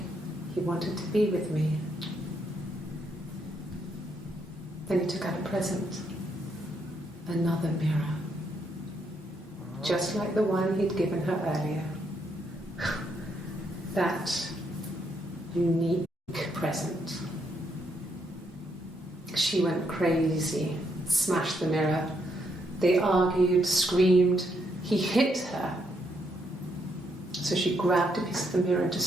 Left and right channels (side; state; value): both; normal; correlation 0.75